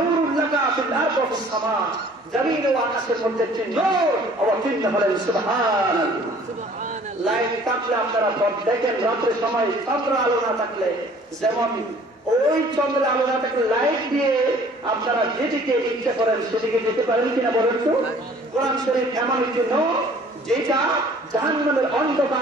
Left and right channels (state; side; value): normal; both; correlation 0.53